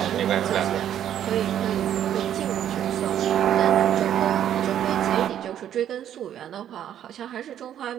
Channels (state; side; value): quieter; left; 10.5 dB